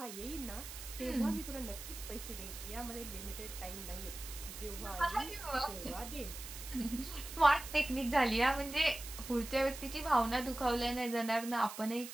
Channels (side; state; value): right; noise; hiss, 11 dB below the sound